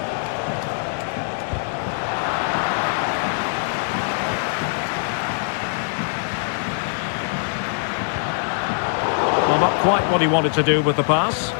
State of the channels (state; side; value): silent; right; 64 dB below the other